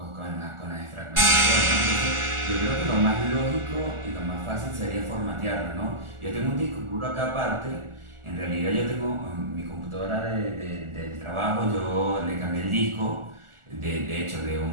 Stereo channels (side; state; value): left; late; 1.4 ms